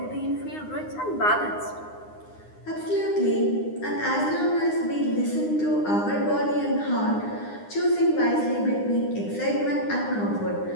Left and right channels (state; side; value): late; right; 9.8 ms